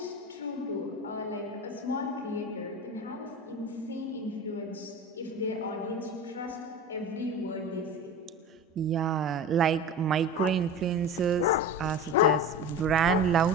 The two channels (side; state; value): both; normal; correlation 0.31